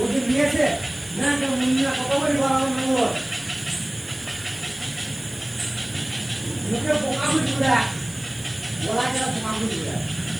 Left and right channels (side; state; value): right; noise; hiss, 19 dB below the sound